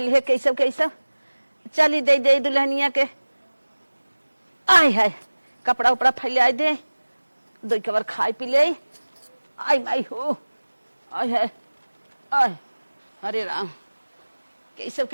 है कैसे कैसे। चली दे दे दुल्हनिया के। आय हाय, कपड़ा उपड़ा फैला दे, दो कबर खाए पी ले। आई माई हो, आय हाय आय, अरे राम, कैसे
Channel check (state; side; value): inverted; both; correlation -1.00